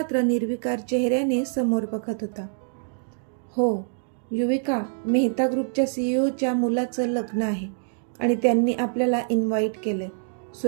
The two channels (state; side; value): silent; left; digital silence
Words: निर्विकार चेहऱ्याने समोर बघत होता. हो युविका, मेहता ग्रुपच्या CEOच्या मुलाचं लग्न आहे आणि त्यांनी आपल्याला इन्व्हाइट केलं आहे,